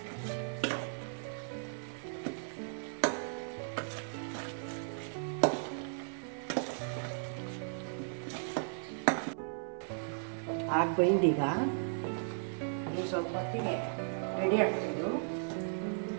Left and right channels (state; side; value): silent; left; 54 dB below the other